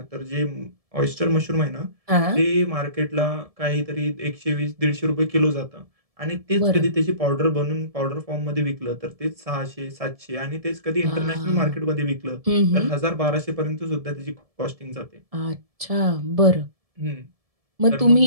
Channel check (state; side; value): late; left; 1.7 ms